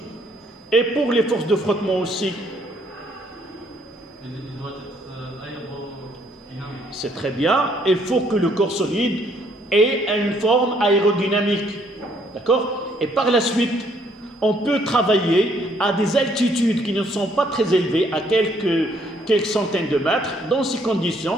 Et pour les forces de frottement aussi. Il doit être aérodynamique. C'est très bien. Il faut que le corps solide ait une forme aérodynamique. D'accord? Et par la suite, on peut travailler à des altitudes qui ne sont pas très élevées, à quelques centaines de mètres. Dans ces conditions,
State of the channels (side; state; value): both; normal; correlation 0.67